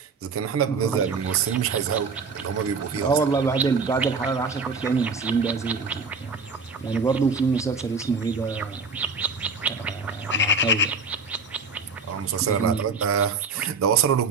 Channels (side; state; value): left; quieter; 4.4 dB